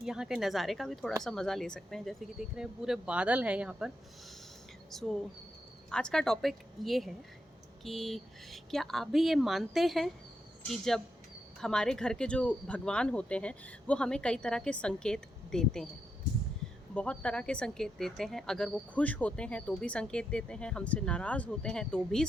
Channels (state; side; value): normal; both; correlation 0.84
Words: यहाँ के नज़ारे का भी थोड़ा सा मज़ा ले सकते हैं। जैसे कि देख रहे हैं पूरे बादल हैं यहाँ पर। आज का टॉपिक ये है कि क्या आप भी ये मानते हैं कि जब हमारे घर के जो भगवान होते हैं वो हमें कई तरह के संकेत देते हैं, बहुत तरह के संकेत देते हैं। अगर वो खुश होते हैं तो भी संकेत देते हैं, हमसे नाराज़ होते हैं तो भी